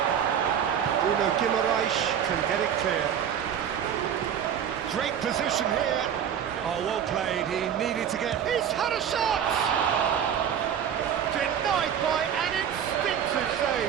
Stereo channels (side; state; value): left; quieter; 8.8 dB